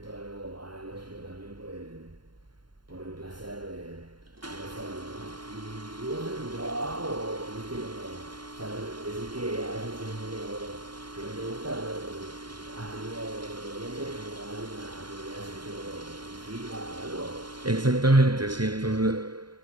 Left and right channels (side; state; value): left; late; 0.72 ms